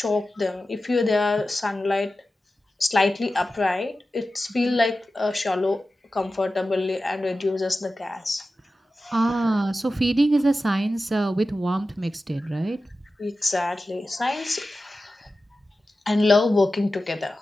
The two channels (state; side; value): normal; both; correlation 0.94